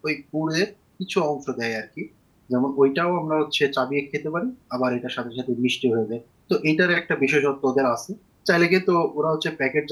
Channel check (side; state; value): both; identical; correlation 1.00